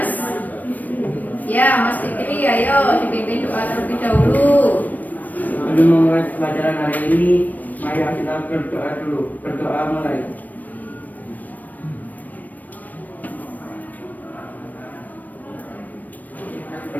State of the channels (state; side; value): late; right; 0.083 ms